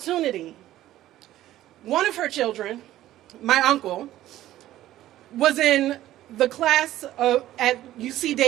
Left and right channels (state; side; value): quieter; left; 14.1 dB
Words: One of her children, my uncle, was in the class at UC